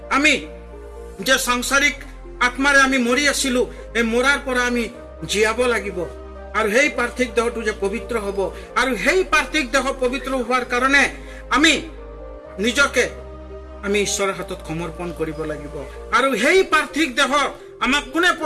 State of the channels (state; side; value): identical; both; correlation 1.00